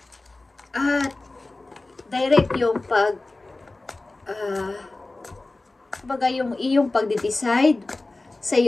At direct yung yung iyong pagde-decide sa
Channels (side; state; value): right; quieter; 3.1 dB